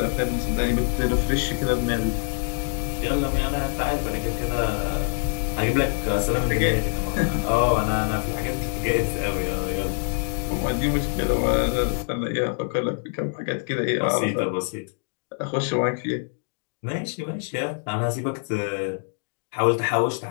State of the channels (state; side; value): silent; right; digital silence